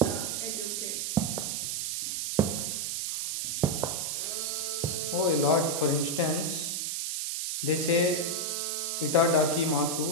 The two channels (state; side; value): noise; right; hiss, 1 dB below the sound